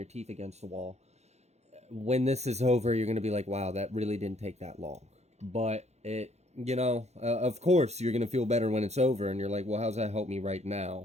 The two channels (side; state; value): left; late; 0.32 ms